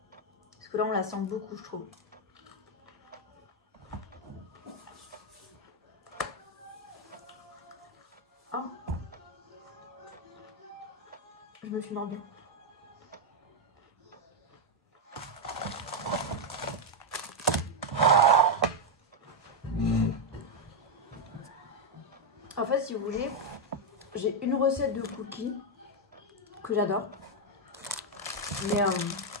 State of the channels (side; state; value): both; normal; correlation 0.01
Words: Parce que là on la sent beaucoup je trouve. Oh. Je me suis mordue. En fait si vous voulez, j'ai une recette de cookies que j'adore. Mais